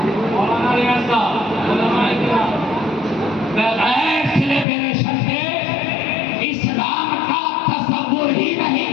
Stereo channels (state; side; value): drops out; right; at 4.7 s